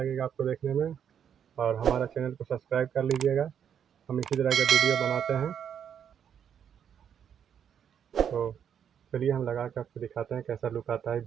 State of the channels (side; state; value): left; quieter; 8.5 dB